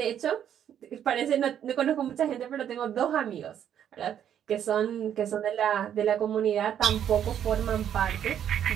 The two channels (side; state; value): left; quieter; 9.6 dB